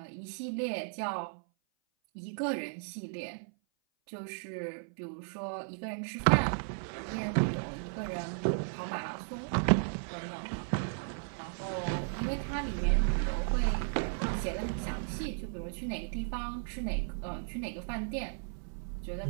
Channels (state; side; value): silent; left; 54 dB below the other